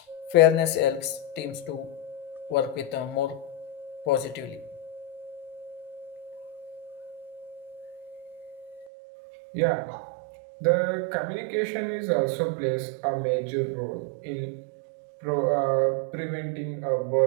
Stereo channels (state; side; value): drops out; left; at 8.8 s